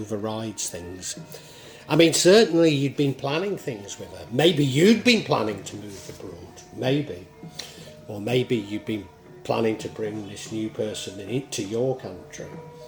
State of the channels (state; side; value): identical; both; correlation 1.00